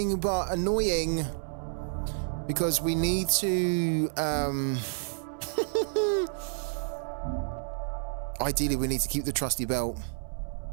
but annoying. Because we need to... Ideally, we need to keep the trusty belt.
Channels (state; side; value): silent; left; 58 dB below the other